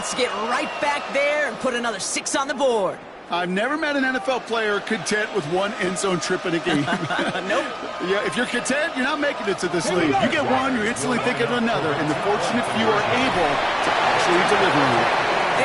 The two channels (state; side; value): identical; both; correlation 1.00